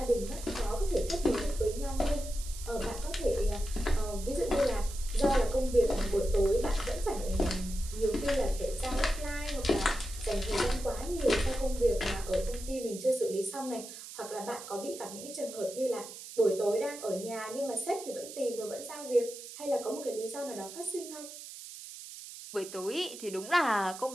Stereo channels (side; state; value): right; noise; hiss, 12 dB below the sound